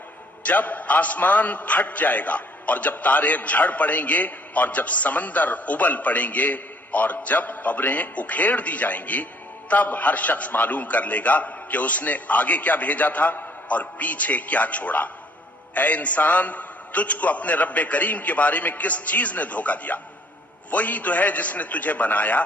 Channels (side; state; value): both; normal; correlation 0.61